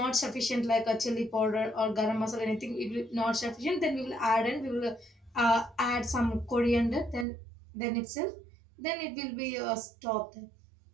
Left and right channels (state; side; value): drops out; left; at 7.2 s